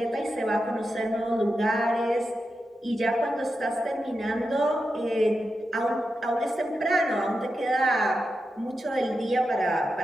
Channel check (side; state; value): both; normal; correlation 0.89